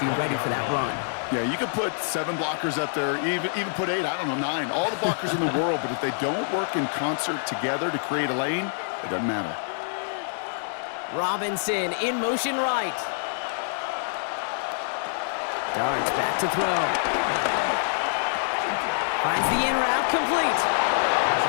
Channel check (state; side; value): silent; right; 61 dB below the other